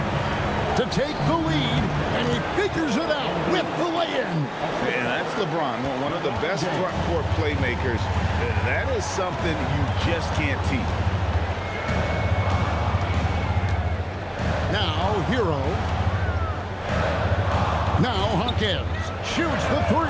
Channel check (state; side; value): identical; both; correlation 1.00